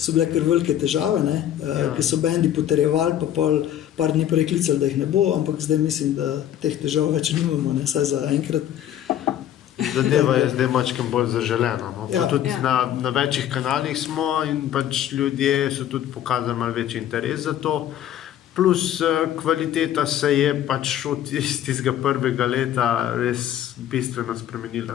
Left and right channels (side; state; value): right; quieter; 11.1 dB